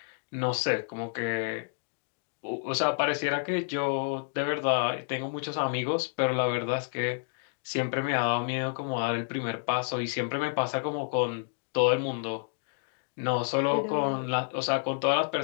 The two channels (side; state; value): right; silent; digital silence